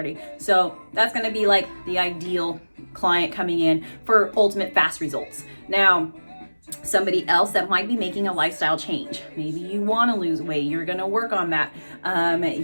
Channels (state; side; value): inverted; both; correlation -1.00